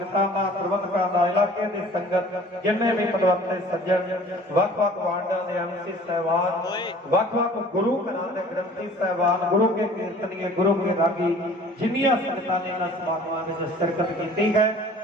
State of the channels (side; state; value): both; normal; correlation 0.49